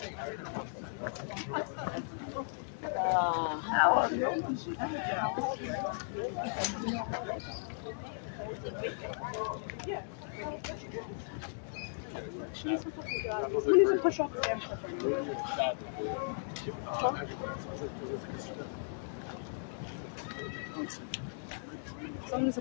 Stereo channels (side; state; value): right; silent; digital silence